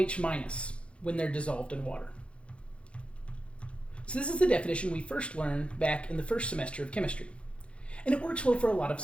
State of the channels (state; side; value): late; right; 0.060 ms